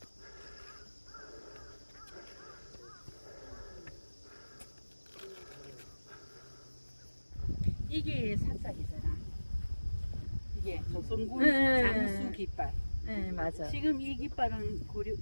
이게 사짝이잖아. 이게 조선군 장수 깃발. 네, 맞아. 지금 이 깃발은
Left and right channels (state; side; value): inverted; both; correlation -1.00